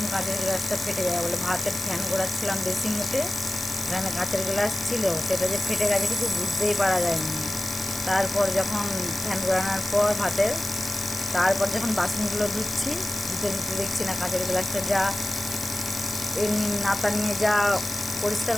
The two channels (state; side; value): noise; left; hiss, 9 dB below the sound